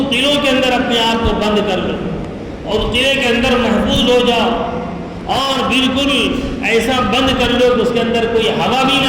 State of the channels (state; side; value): identical; both; correlation 1.00